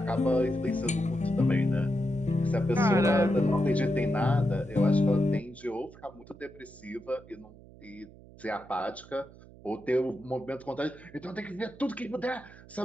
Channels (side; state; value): right; noise; hum, 21 dB below the sound